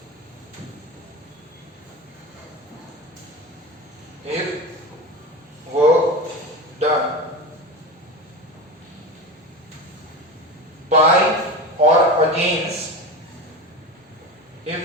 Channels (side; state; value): both; normal; correlation 0.25